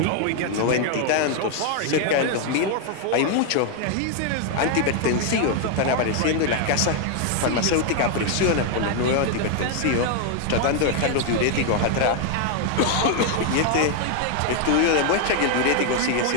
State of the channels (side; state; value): both; different; correlation 0.00